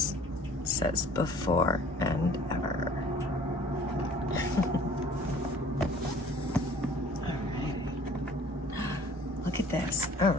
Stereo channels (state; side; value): normal; both; correlation 0.51